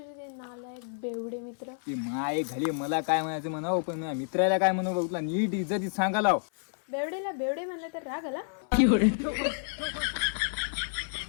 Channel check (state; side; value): silent; right; 58 dB below the other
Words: ते नालायक बेवडे मित्र. की माय घाली मला काय म्हणायचं म्हणावं, पण माझ्या मित्राला काय म्हणू बघ, नीट इज्जतीत सांगायला. बेवडेला बेवडे म्हणलं तर राग आला.